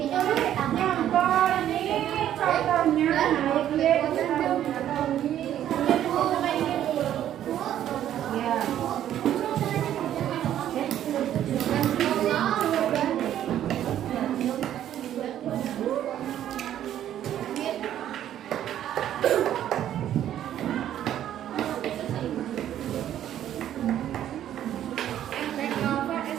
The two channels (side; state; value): left; quieter; 11.3 dB